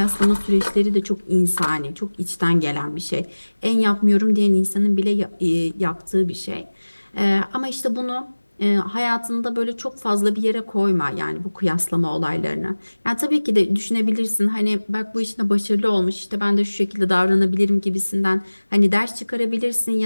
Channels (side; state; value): both; inverted; correlation -1.00